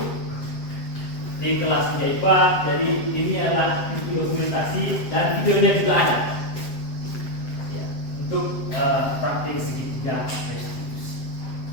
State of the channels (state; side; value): late; right; 7.8 ms